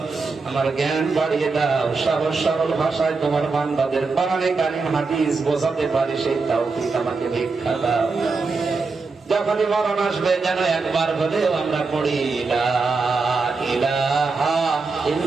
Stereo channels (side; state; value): left; quieter; 4.2 dB